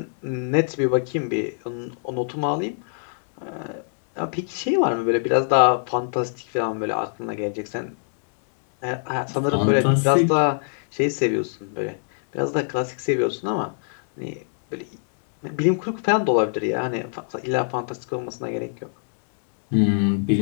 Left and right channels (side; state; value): right; silent; digital silence